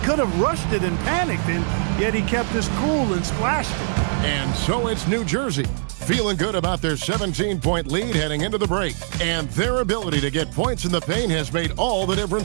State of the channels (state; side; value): silent; left; digital silence